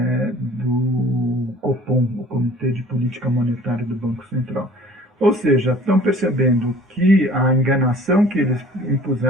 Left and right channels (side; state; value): both; normal; correlation 0.50